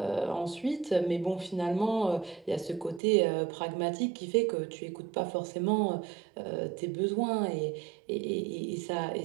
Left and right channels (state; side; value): drops out; left; at 3.0 s